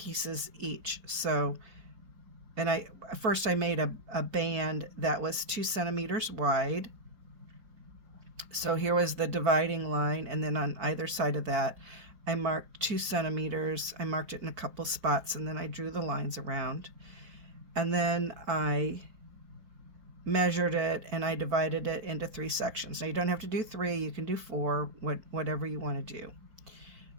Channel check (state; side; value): late; left; 4.5 ms